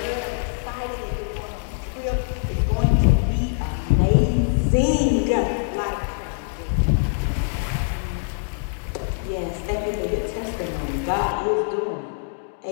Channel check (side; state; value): right; silent; digital silence